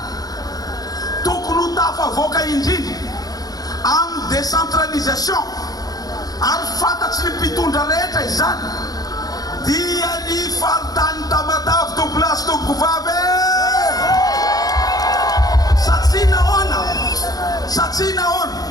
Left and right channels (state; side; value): late; right; 0.18 ms